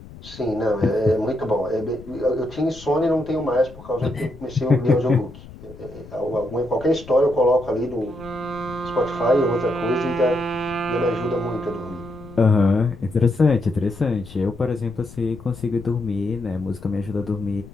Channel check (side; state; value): left; noise; rumble, 17 dB below the sound